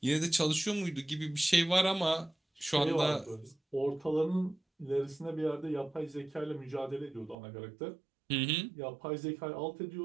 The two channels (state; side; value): drops out; left; at 7.4 s